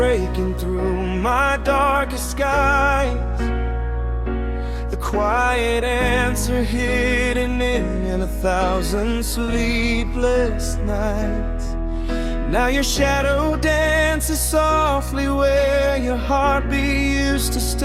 through my darkest skies, the quiet answer hidden in 1,000 sleepless nights. Now your shadow dances softly where your heartbeat used to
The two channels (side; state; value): both; identical; correlation 1.00